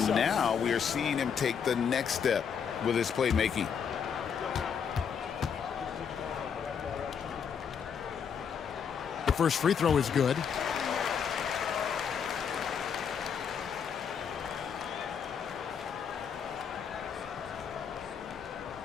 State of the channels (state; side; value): quieter; right; 7.1 dB